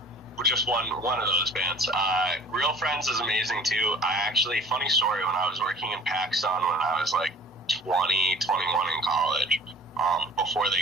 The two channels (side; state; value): both; normal; correlation 0.46